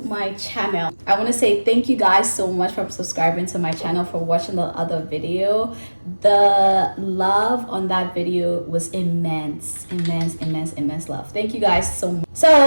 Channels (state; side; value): inverted; both; correlation -1.00